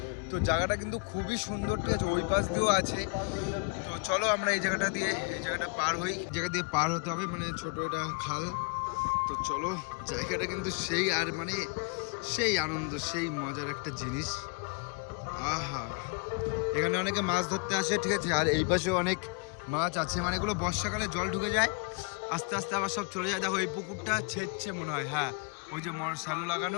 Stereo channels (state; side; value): quieter; right; 32.4 dB